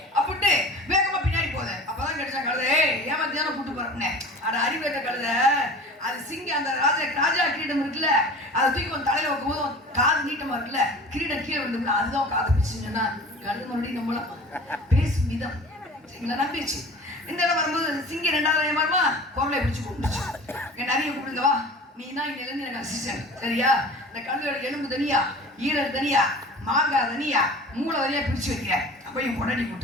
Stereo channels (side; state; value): both; normal; correlation 0.40